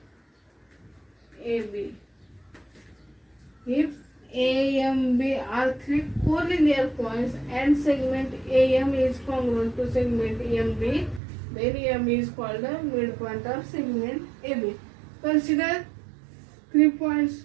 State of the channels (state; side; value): drops out; left; at 11.2 s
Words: AB. If A, M, B are three collinear points and segment AM is congruent to segment MB, then M is called the midpoint of segment AB. Consider 3